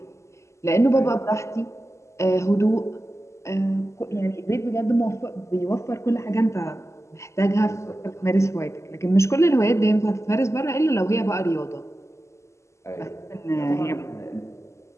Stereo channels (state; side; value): late; right; 0.14 ms